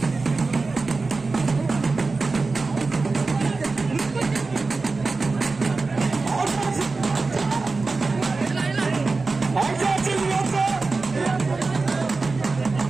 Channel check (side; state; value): left; quieter; 3.9 dB